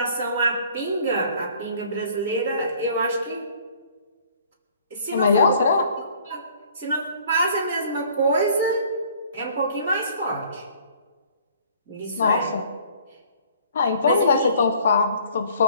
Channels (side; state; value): both; inverted; correlation -0.56